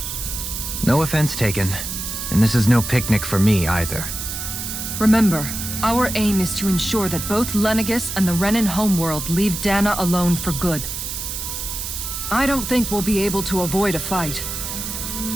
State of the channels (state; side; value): noise; right; hiss, 5 dB below the sound